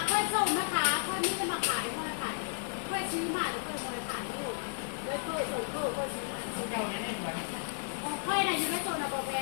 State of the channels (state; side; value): silent; right; 56 dB below the other